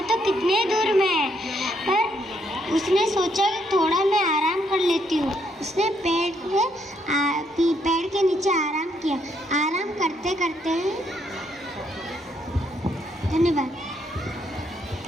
तो कितने दूर में है। पर उसने सोचा कि थोड़ा मैं आराम कर लेती हूँ। उसने पेड़ के नीचे आराम किया। आराम करते करते धन्यवाद।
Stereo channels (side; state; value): both; normal; correlation 0.73